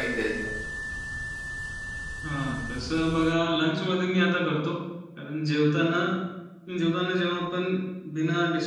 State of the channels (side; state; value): both; identical; correlation 1.00